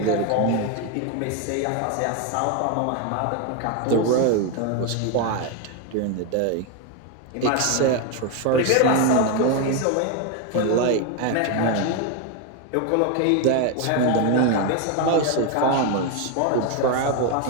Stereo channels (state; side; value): different; both; correlation 0.02